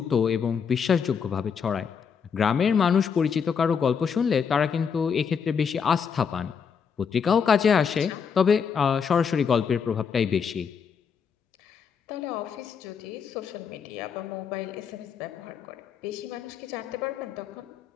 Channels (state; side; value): quieter; right; 6.6 dB